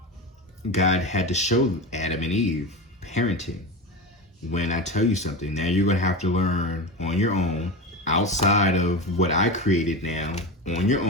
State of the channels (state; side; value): normal; both; correlation 0.23